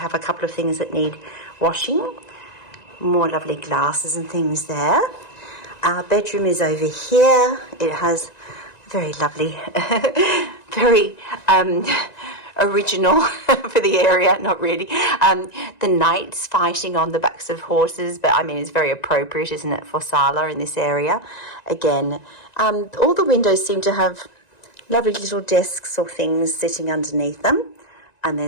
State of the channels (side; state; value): right; late; 1.9 ms